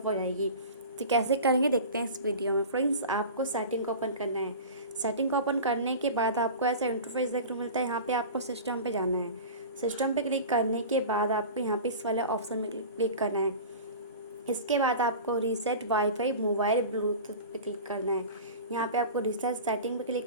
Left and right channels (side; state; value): both; inverted; correlation -0.34